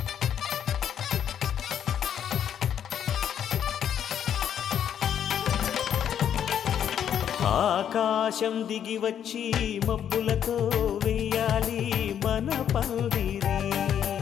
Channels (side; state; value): right; quieter; 9.3 dB